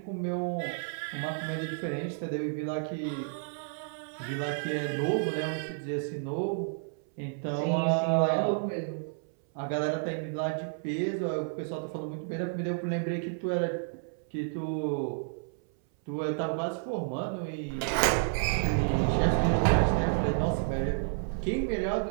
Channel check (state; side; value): silent; left; 57 dB below the other